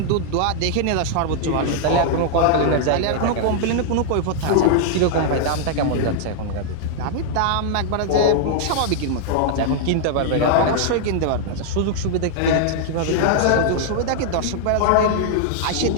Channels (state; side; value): different; both; correlation -0.01